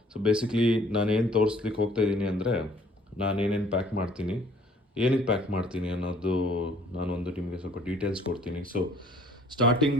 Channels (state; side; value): normal; both; correlation 0.57